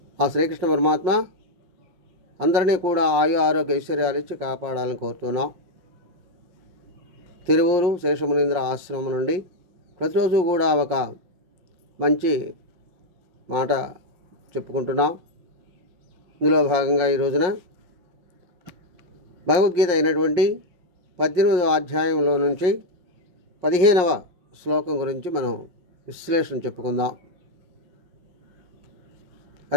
ఆ శ్రీకృష్ణ పరమాత్మ అందరినీ కూడా ఆయు ఆరోగ్య ఐశ్వర్యాలు ఇచ్చి కాపాడాలని కోరుతున్నాం. తిరువూరు శేషమునీంద్ర ఆశ్రమం నుండి ప్రతిరోజు కూడా ఒక మంచి మాట చెప్పుకుంటున్నాం. ఇందులో భాగంగా ఈ రోజున భగవద్గీత అయినటువంటి 18వ అధ్యాయంలో నుంచి 15వ శ్లోకం గురించి మనం విశ్లేషణ చెప్పుకుందాం.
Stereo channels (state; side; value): late; left; 5.5 ms